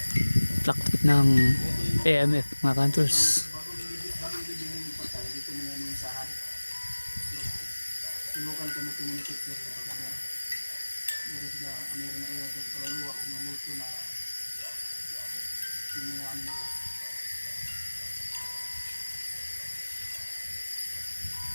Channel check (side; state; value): both; inverted; correlation -1.00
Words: fluctuate ng AMF mga kantors. Sinukan ko mag-communicate ko pag meron sila meron na iwan sa kaluluwa kung mamulto na yung mga ano nila.